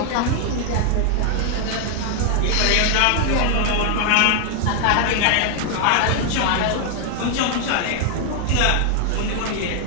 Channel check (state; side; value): different; both; correlation 0.00